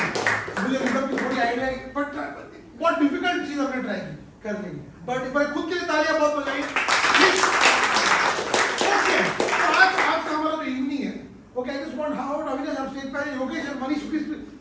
मुझे मतलब की थोड़ी आइडिया है, but बहुत डिफिकल्ट चीज हमने ट्राई की करने की. बट एक बार खुद के लिए तालियां बहुत बजाई. ओके, आज का हमारा जो इवनिंग है, okay, I just want how Avinash आप स्टेज पे, योगेश और Manish please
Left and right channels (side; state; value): both; identical; correlation 1.00